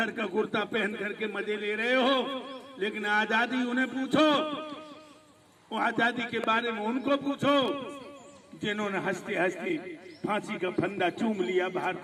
का कुर्ता पहन करके मजे ले रहे हो, लेकिन आजादी उन्हें पूछो। वो आजादी के बारे में उनको पूछो जिन्होंने हंसते हंसते फांसी का फंदा चूम लिया भारत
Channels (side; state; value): both; identical; correlation 1.00